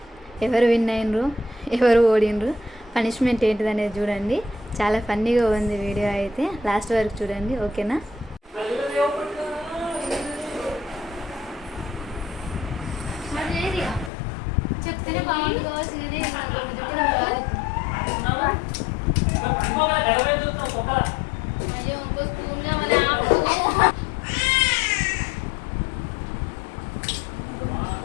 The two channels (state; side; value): drops out; right; at 14.1 s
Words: ఎవరు విన్ అయినరు, ఎవరు ఓడినరు, పనిష్మెంట్ ఏంటిది అనేది చూడండి. చాలా ఫన్నీగా ఉంది వీడియో, అయితే లాస్ట్ వరకు చూడండి, ఓకేనా?